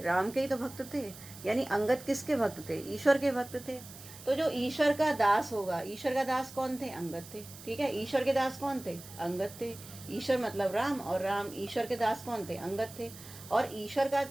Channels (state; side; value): noise; right; hiss, 16 dB below the sound